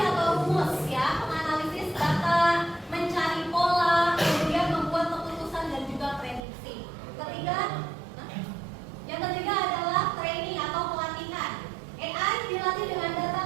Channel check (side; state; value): left; drops out; at 6.4 s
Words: atau rumus ya, menganalisis data, mencari pola, kemudian membuat keputusan dan juga prediksi. Yang ketiga adalah training atau pelatihan. AI dilatih dengan data